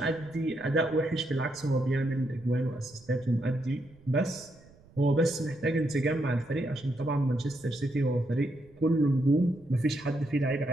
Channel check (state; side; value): noise; right; rumble, 26 dB below the sound